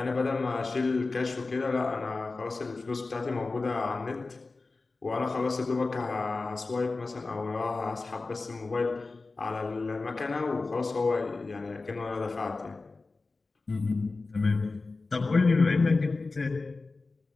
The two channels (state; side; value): quieter; right; 3.7 dB